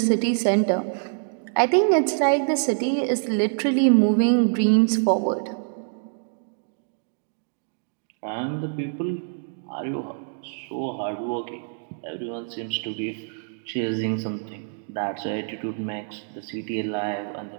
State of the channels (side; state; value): left; silent; digital silence